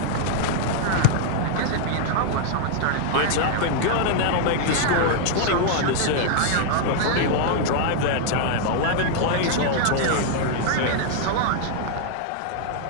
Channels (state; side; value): different; both; correlation 0.00